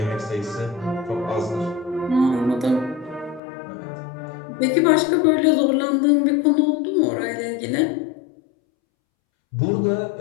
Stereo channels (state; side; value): drops out; right; at 3.4 s